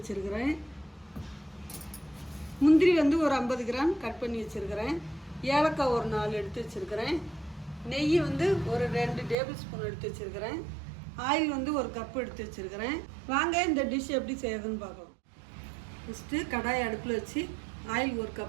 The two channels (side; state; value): left; drops out; at 9.3 s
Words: முந்திரி ஒரு 50 கிராம் கட் பண்ணி வச்சுருக்கிறேன். ஏலக்காய் 4 எடுத்து வச்சுருக்கிறேன். நெய் ஒரு 2 டேபிள் ஸ்பூன் எடுத்து வச்சுருக்கிறேன். ஆயில் 1 கப் எடுத்து வச்சுருக்கிறேன். வாங்க இந்த டிஷ் எப்படி செய்யறதுன்னு பார்க்கலாம். ஃபஸ்ட்டு கடாயை அடுப்பில் வச்சு ஆயில் 1